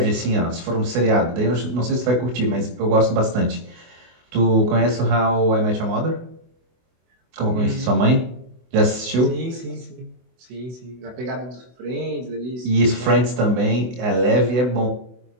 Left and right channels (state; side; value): late; left; 24 ms